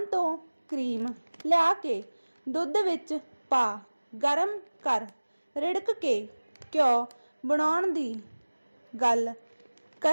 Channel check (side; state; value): both; inverted; correlation -1.00